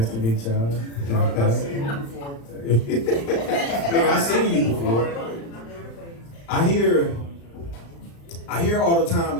to meet y'all. I've seen you before. I've seen you before. I hear all the time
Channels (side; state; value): right; late; 35 ms